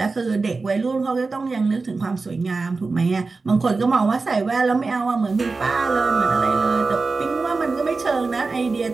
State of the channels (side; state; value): left; quieter; 4.0 dB